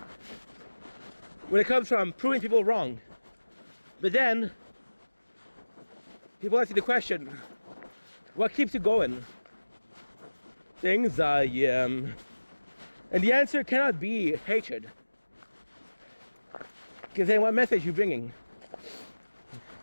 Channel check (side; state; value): both; inverted; correlation -1.00